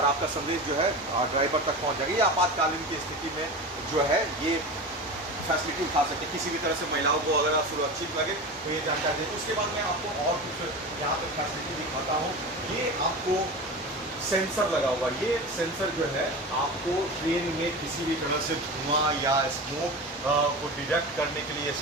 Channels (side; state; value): both; normal; correlation 0.28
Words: आपका संदेश जो है ड्राइवर तक पहुँच जाएगा। ये आपातकालीन की स्थिति में जो है ये फैसिलिटी उठा सकते हैं, किसी भी तरह से महिलाओं को अगर आप सुरक्षित लगे तो ये जानकारी दें। उसके बाद मैं आपको और कुछ यहाँ पे फैसिलिटी दिखाता हूँ। ये आपको सेंसर लगा हुआ, ये सेंसर जो है आपको ट्रेन में किसी भी तरह से धुआं या स्मोक को डिटेक्ट करने के लिए